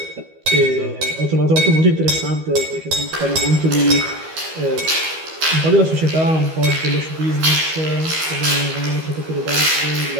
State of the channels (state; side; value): late; left; 13 ms